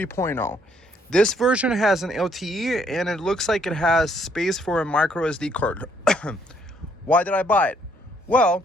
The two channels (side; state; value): both; normal; correlation 0.68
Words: This version has an LTE and it looks like it has space for a micro SD card. Why did I buy it? Well,